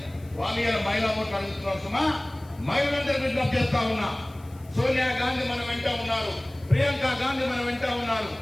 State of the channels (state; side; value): noise; left; hiss, 27 dB below the sound